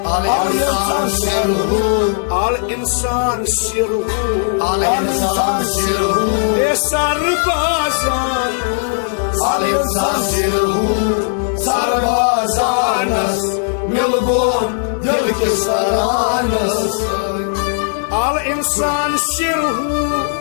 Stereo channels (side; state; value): right; silent; 63 dB below the other